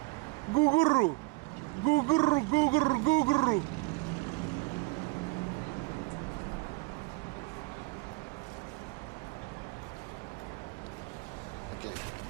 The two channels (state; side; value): quieter; left; 26.9 dB